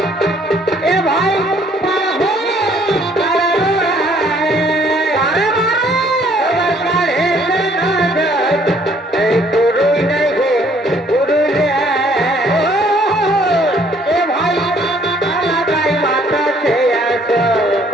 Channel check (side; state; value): both; normal; correlation 0.62